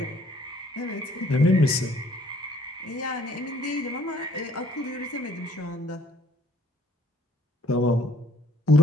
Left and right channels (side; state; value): both; normal; correlation 0.59